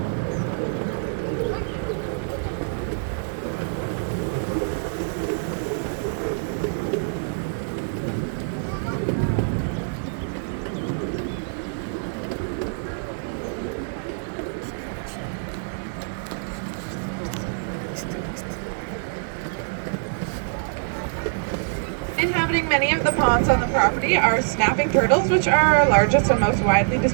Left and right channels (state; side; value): silent; left; digital silence